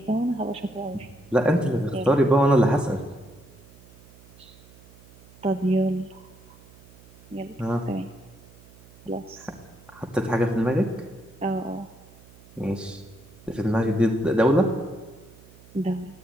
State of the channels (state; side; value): noise; right; hum, 24 dB below the sound